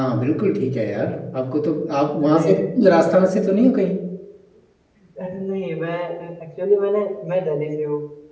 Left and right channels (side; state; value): both; identical; correlation 1.00